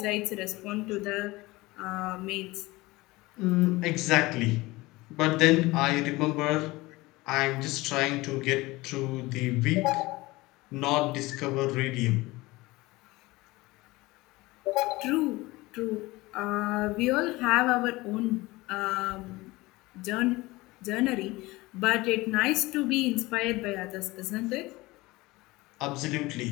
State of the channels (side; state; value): right; quieter; 20.9 dB